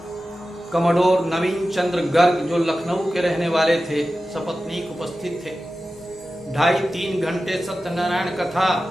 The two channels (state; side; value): normal; both; correlation 0.94